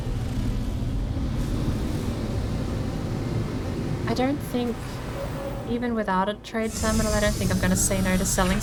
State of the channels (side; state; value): both; identical; correlation 1.00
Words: I don't think, even without a trade terminal, I don't think I'm going to say no to selling